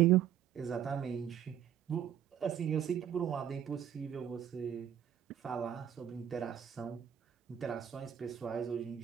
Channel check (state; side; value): quieter; left; 9.7 dB